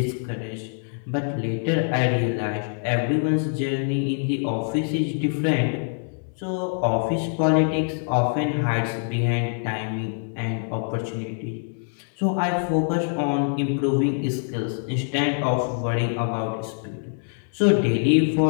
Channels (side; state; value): right; silent; 62 dB below the other